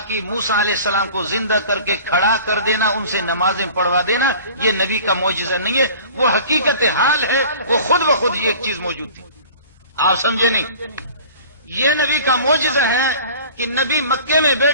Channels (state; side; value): inverted; both; correlation -0.44